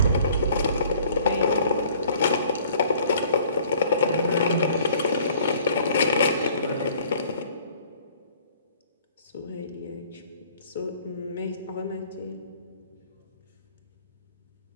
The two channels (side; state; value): both; inverted; correlation -0.55